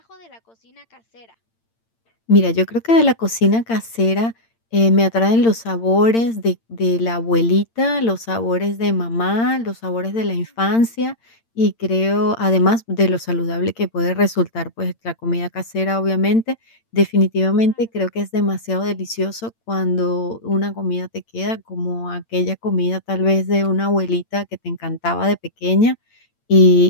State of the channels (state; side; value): late; right; 8.8 ms